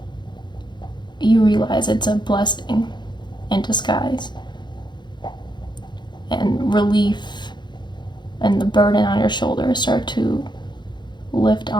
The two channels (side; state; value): right; late; 0.22 ms